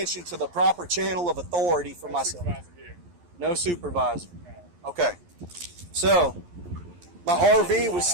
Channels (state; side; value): late; left; 11 ms